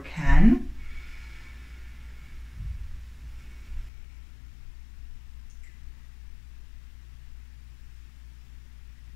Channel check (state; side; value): drops out; right; at 3.9 s